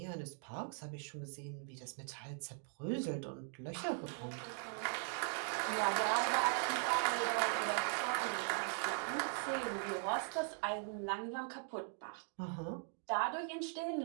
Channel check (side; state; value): left; silent; 51 dB below the other